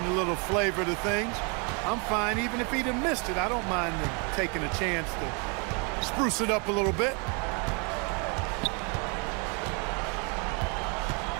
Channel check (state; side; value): quieter; left; 34.1 dB